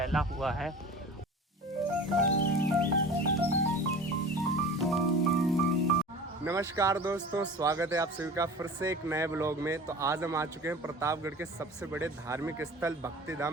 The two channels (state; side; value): normal; both; correlation 0.38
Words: हुआ है। नमस्कार दोस्तों, स्वागत है आप सभी का फिर से एक नए ब्लॉग में। तो आज हम आ चुके हैं प्रतापगढ़ के सबसे बड़े धार्मिक स्थल